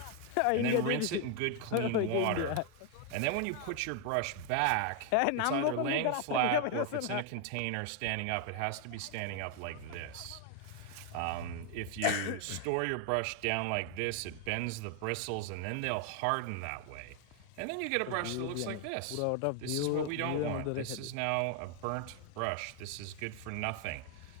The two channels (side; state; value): both; different; correlation 0.00